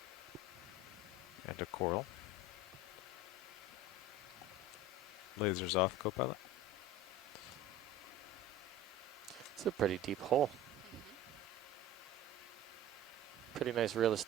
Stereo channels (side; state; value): both; normal; correlation 0.36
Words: And a coral. Lasers off, Copilot. It's a pretty deep hole. Pretty nice real